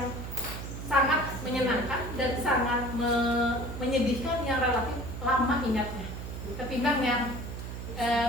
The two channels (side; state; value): right; noise; hum, 7 dB below the sound